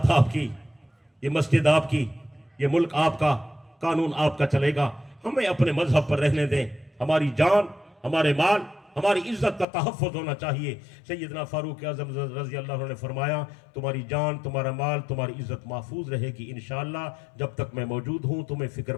آپ کی، یہ مسجد آپ کی، یہ ملک آپ کا، قانون آپ کا چلے گا. ہمیں اپنے مذہب پر رہنے دیں. ہماری جان، ہمارے مال، ہماری عزت کا تحفظ ہونا چاہیے. سیدنا فاروق اعظم رضی اللہ عنہ نے فرمایا تمہاری جان، تمہارا مال، تمہاری عزت محفوظ رہے گی انشاءاللہ. جب تک میں موجود ہوں تمہیں فکر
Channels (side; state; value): right; drops out; at 9.7 s